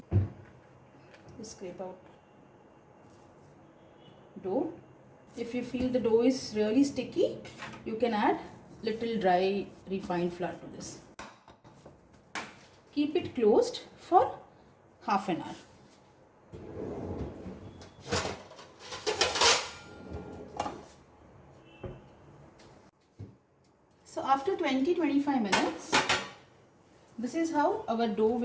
Scrape out dough. If you feel the dough is really sticky, you can add little dry refined flour to this. Keep it closed for half an hour. So after 20-25 minutes, this is how our dough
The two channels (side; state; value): both; identical; correlation 1.00